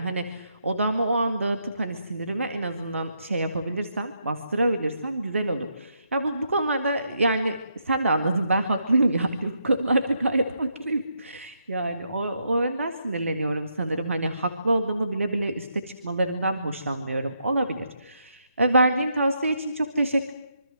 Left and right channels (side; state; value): both; inverted; correlation -0.79